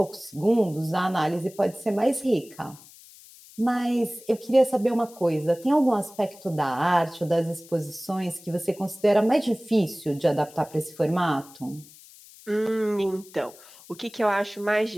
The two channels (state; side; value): noise; left; hiss, 22 dB below the sound